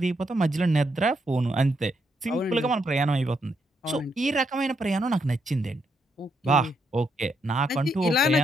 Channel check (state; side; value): normal; both; correlation 0.78